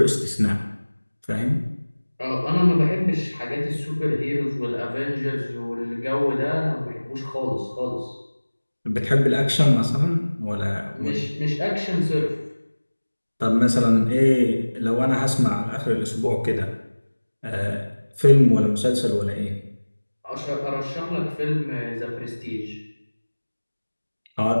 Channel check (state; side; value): inverted; both; correlation -1.00